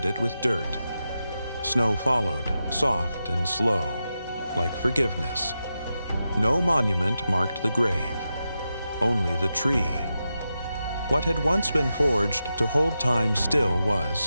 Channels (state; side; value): inverted; both; correlation -0.89